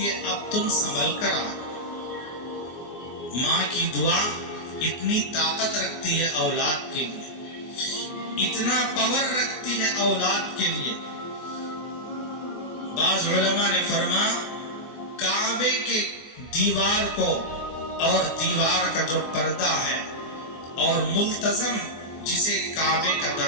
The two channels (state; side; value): late; right; 24 ms